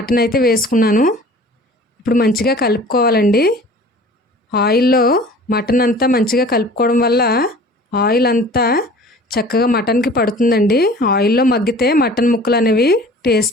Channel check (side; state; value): both; normal; correlation 0.45